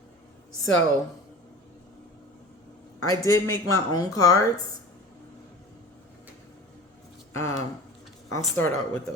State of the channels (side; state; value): both; normal; correlation 0.38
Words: So, I did make my own cards. I'll start out with